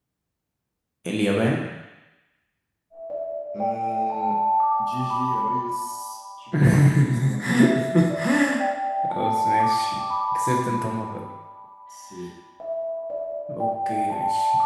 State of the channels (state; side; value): identical; both; correlation 1.00